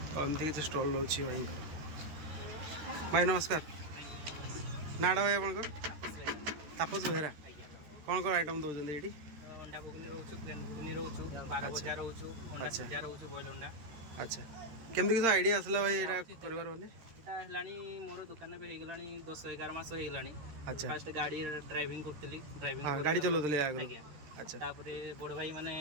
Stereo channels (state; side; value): late; left; 13 ms